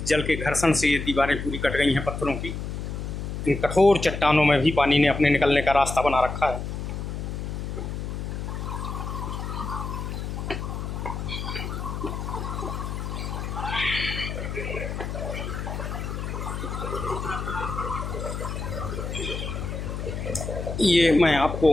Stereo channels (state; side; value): noise; left; hum, 5 dB below the sound